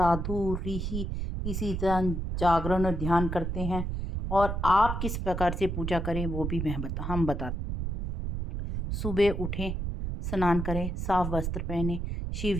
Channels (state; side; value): noise; right; rumble, 3 dB below the sound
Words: ऋषि इसी तरह जागरण और ध्यान करते हैं। और आप किस प्रकार से पूजा करें वो भी हम बताते। सुबह उठें, स्नान करें, साफ वस्त्र पहने,